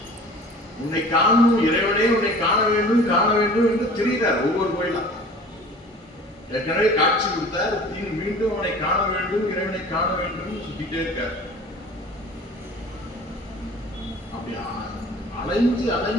உன்னை காணும் இறைவனே, உன்னை காண வேண்டும் என்று தெரிகிறார் ஒவ்வொரு கோயிலும். ஏற்கனவே காட்சி கொடுத்தார், மீண்டும் அவனை காண வேண்டும், இறைவனை காண வேண்டும் சுத்திட்டே இருக்கார். அப்படி அலைஞ்சு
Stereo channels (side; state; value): both; normal; correlation 0.44